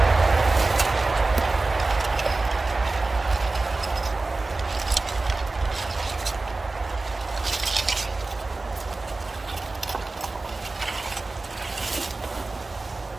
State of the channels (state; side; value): quieter; left; 3.4 dB